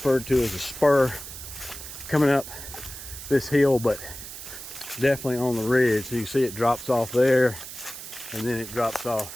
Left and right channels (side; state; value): right; noise; hiss, 11 dB below the sound